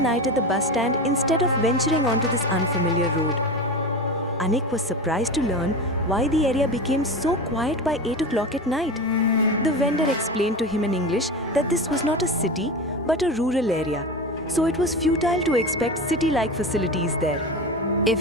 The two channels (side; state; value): both; normal; correlation 0.25